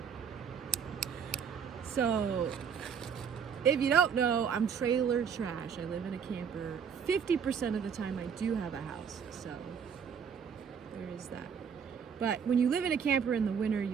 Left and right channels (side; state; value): left; quieter; 7.0 dB